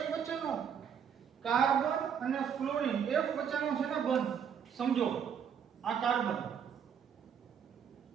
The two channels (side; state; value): left; quieter; 7.7 dB